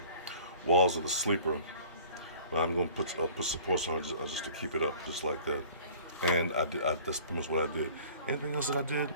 walls of the sleeper. But I'm going to put supports on it just to keep it up, just like that. And that's pretty much what I did. Anything else that I did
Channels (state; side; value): inverted; both; correlation -0.49